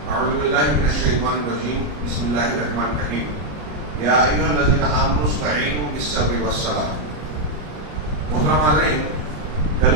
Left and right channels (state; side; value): late; left; 33 ms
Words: أعوذ بالله من الشيطان الرجيم. بسم الله الرحمن الرحيم. يا أيها الذين آمنوا استعينوا بالصبر والصلاة. محترم حاضرین، کل